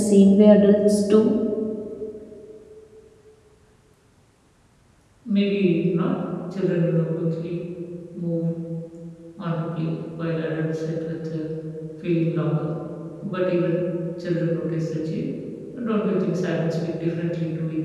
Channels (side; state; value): both; identical; correlation 1.00